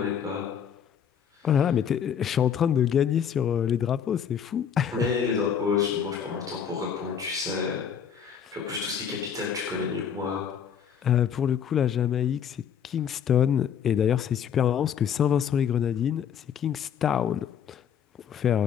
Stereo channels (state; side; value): quieter; right; 8.2 dB